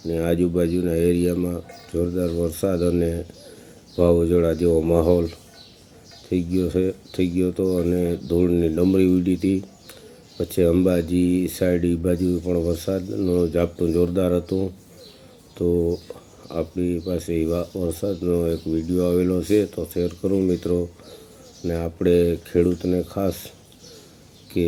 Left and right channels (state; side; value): identical; both; correlation 1.00